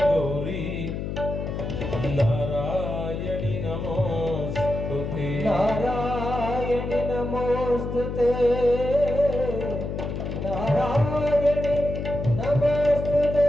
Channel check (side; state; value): left; noise; hum, 4 dB below the sound